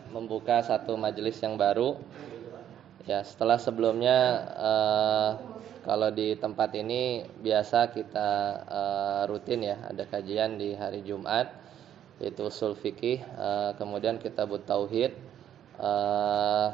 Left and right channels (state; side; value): quieter; left; 10.4 dB